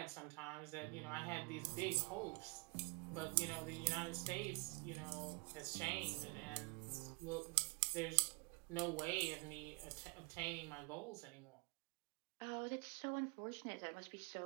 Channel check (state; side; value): quieter; left; 30.3 dB